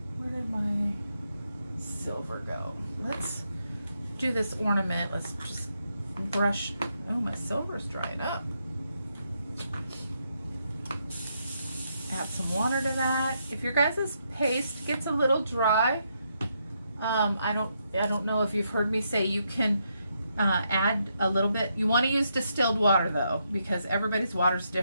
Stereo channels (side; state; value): both; inverted; correlation -0.79